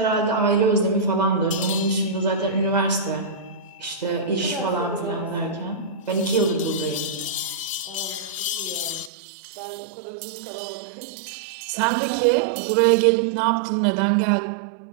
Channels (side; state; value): left; drops out; at 9.1 s